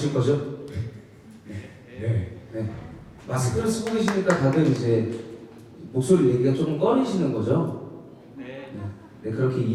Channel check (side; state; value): both; identical; correlation 1.00